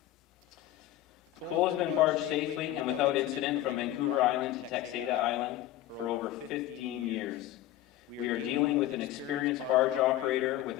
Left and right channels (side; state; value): right; quieter; 13.9 dB